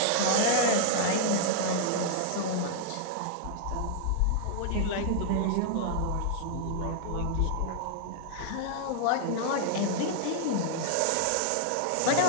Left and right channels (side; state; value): both; different; correlation 0.00